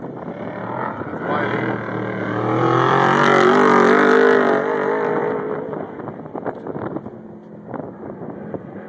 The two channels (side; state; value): both; identical; correlation 1.00